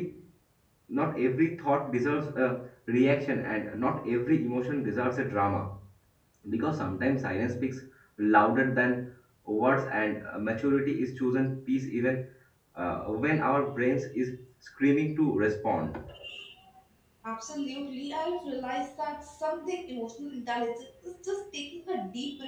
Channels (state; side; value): identical; both; correlation 1.00